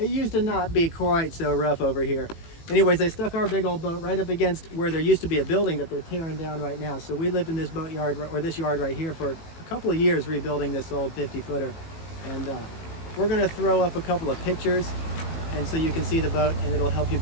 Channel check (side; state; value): right; late; 18 ms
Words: used to not be quite so rough over here. Anyways, they stuck our big old boat right up against where there used to be a building that they're tearing down right now. So we lived in this boatyard, or this yard right here, for a couple of years rebuilding this old 50-footer. And we're going to throw up a couple of pictures, and so you can see the boat, and it'll help you